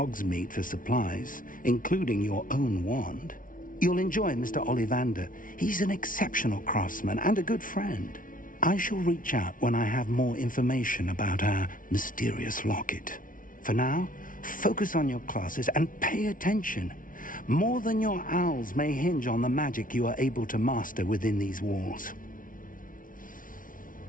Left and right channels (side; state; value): right; late; 0.39 ms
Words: for supplies, including your own wand. You'll enjoy Mr. Ollivander. He's an exceptional craftsman and a good friend. I shall reach out when I have more information about our mysterious locket. For now, focus on your classes and pay attention. More than your owls may hinge on the magic you are able to master within these walls.